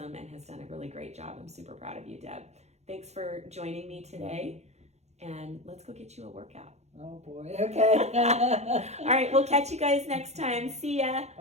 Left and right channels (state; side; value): late; left; 0.32 ms